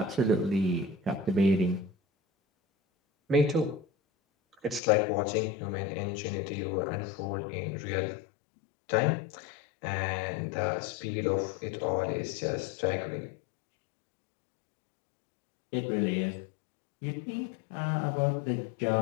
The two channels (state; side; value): drops out; right; at 4.8 s